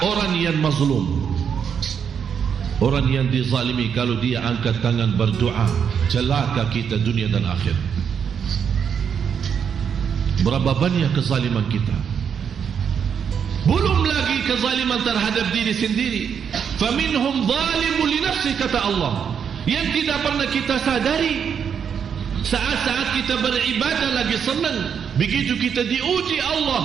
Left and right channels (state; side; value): quieter; left; 7.4 dB